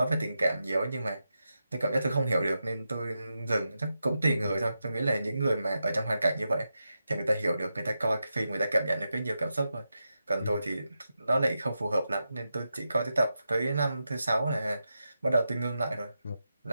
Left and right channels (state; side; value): inverted; both; correlation -0.88